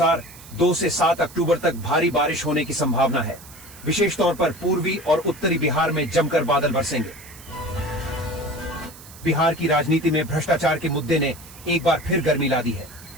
2 से 7 अक्टूबर तक भारी बारिश होने की संभावना है। विशेष तौर पर पूर्वी और उत्तरी बिहार में जमकर बादल बरसेंगे। बिहार की राजनीति में भ्रष्टाचार के मुद्दे ने एक बार फिर गर्मी ला दी है।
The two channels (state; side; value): noise; right; hiss, 19 dB below the sound